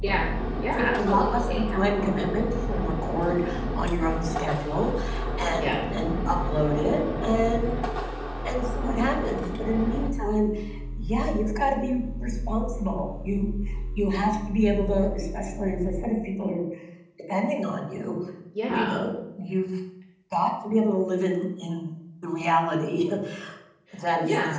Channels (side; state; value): both; identical; correlation 1.00